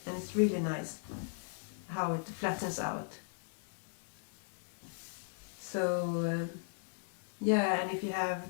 and it's really nice how it flattens out. So yeah, and if you have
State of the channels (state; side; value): silent; right; 53 dB below the other